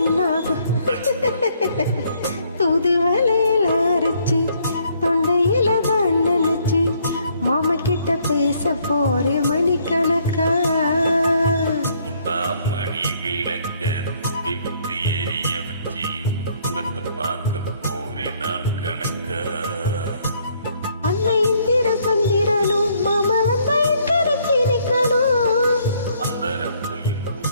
புதுவலையில அரைச்சி தொண்டையில தான் நினைச்சி மாமா கிட்ட பேச போறேன் மணிக்கணக்கா. மணி விளக்க துண்டி விட்டு எரிய வச்சு முகத்தை பார்க்க போறேன் நாள் கணக்கா. அந்த இந்திர சந்திரனும் மாமா வந்த இந்திர சீனிக்கணும். அந்த ரம்பையும்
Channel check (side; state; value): both; inverted; correlation -0.66